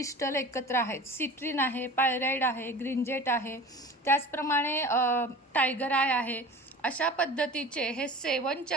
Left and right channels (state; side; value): normal; both; correlation 0.38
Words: एकत्र आहेत. सिट्रिन आहे, पायराइड आहे, ग्रीनजेट आहे, त्याचप्रमाणे टायगर आय आहे. अशा पद्धतीचे हे सेवन